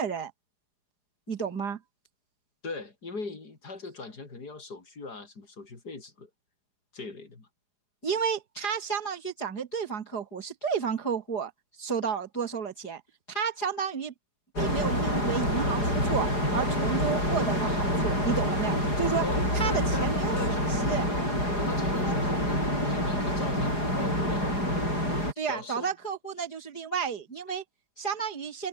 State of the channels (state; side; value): late; right; 4.8 ms